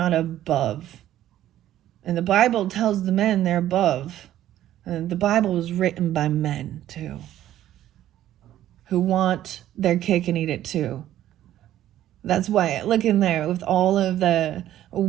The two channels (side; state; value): left; quieter; 12.7 dB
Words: above. And the Bible tells the men they're above. And the Bible was written by men too. who want their cake and eat it too. That's why, look in there, with all of the